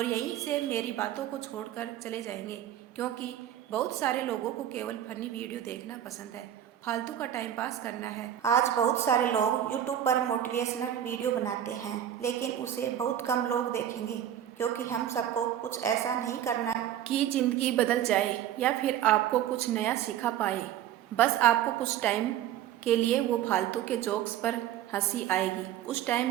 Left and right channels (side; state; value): left; quieter; 11.1 dB